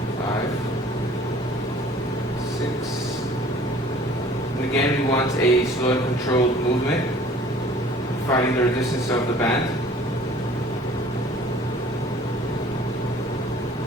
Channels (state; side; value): normal; both; correlation 0.50